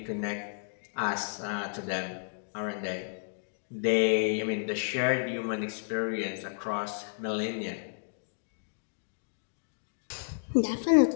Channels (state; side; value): silent; right; digital silence